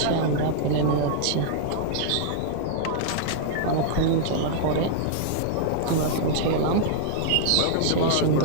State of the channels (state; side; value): different; both; correlation -0.01